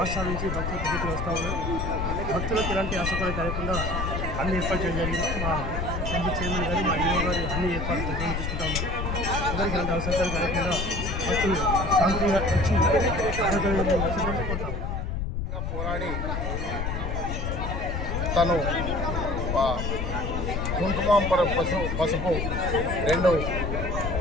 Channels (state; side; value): noise; left; rumble, 2 dB below the sound